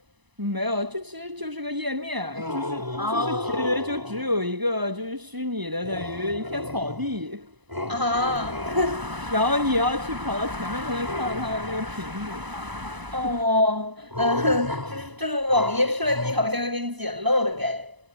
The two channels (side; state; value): left; late; 1.0 ms